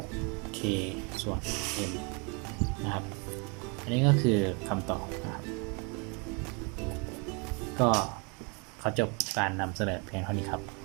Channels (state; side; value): quieter; left; 32.9 dB